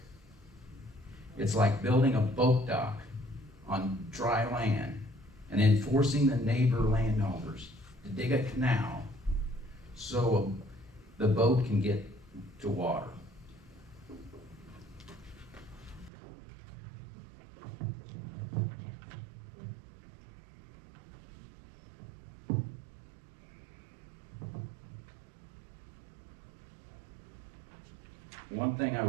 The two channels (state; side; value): drops out; left; at 16.1 s